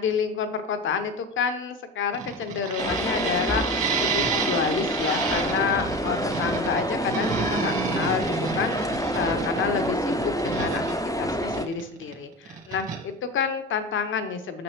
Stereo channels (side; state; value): both; normal; correlation 0.29